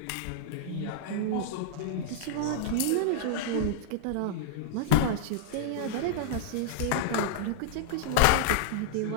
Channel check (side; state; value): both; different; correlation -0.01